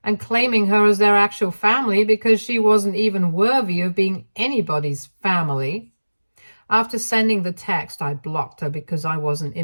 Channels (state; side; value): inverted; both; correlation -1.00